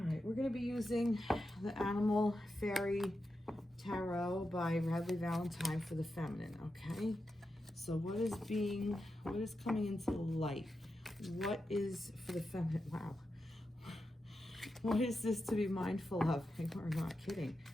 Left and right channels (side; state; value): both; normal; correlation 0.89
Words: right, we're going to be using the Animal Fairy Tarot by Radleigh Valentine for the feminine, okay? So what is coming into the light? What is for the feminine? Wow. What is this to be mindful of? We're not kidding.